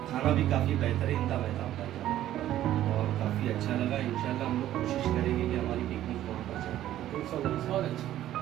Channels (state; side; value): quieter; left; 12.9 dB